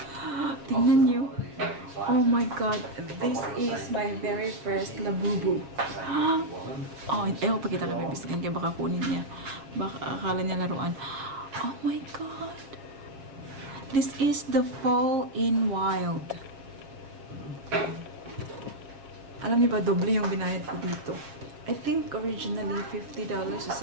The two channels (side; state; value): left; late; 6.9 ms